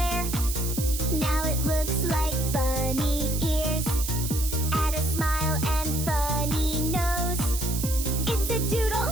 Now it looks like bunny ears. Add a smile and funny nose. It's a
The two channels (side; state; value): right; noise; hiss, 6 dB below the sound